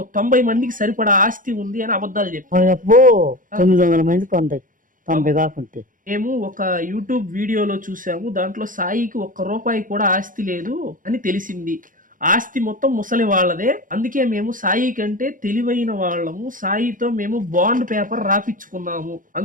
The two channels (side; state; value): left; late; 0.39 ms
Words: 90 మందికి సరిపడా ఆస్తి ఉంది అని అబద్ధాలు చెప్పారు. 900 మందికి 90 కాకుంటే. మేము ఒక యూట్యూబ్ వీడియోలో చూసాము, దాంట్లో సాయికి 1 రూపాయి కూడా ఆస్తి లేదు అని తెలిసింది. ఆస్తి మొత్తం ముసలి వాళ్ళదే. అందుకే మేము సాయి కంటే తెలివైన వాళ్ళము. సాయితో మేము బాండ్ పేపర్ రాపించుకున్నాము.